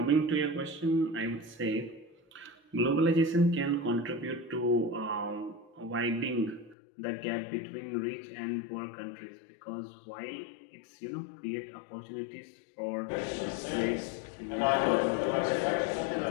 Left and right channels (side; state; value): right; drops out; at 6.8 s